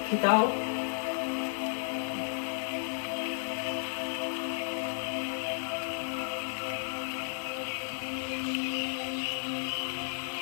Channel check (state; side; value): silent; right; 56 dB below the other